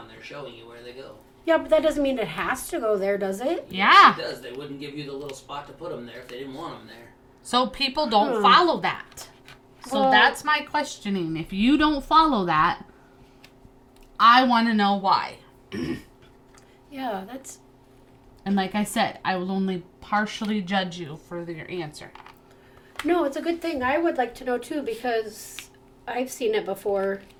there showing you where they go. Yeah, but that doesn't mean it has to go there, does it? Yeah. It does. They wouldn't give you the little spot to put them there if they didn't want them there. So people don't follow that. So Well- that's my questioning. If you don't follow that, I want to know why. Yeah, that's... And like I said, I will only partially judge you for your answer. No, it's a good thing. I would like to know, too, because I've seen it before,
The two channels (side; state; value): both; identical; correlation 1.00